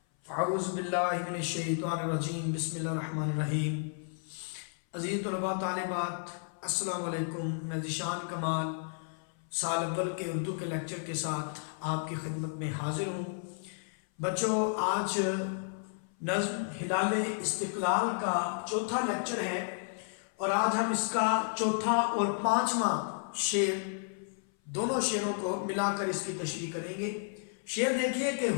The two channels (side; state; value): right; silent; 56 dB below the other